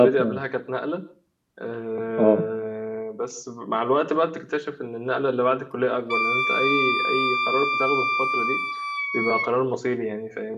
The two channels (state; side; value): identical; both; correlation 1.00